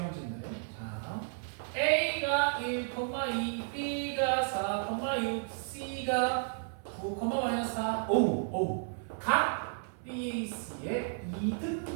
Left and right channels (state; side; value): silent; left; 56 dB below the other